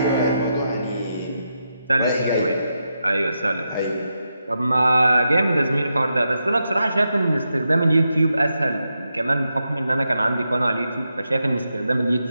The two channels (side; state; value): both; inverted; correlation -0.85